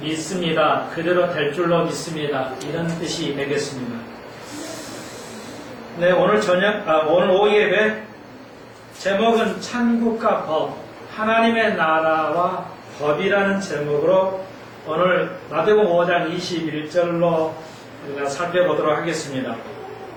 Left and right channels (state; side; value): identical; both; correlation 1.00